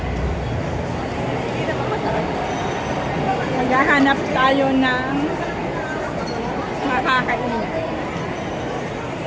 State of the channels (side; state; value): both; identical; correlation 1.00